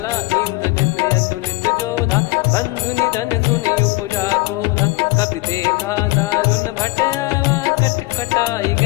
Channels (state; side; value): quieter; right; 22.5 dB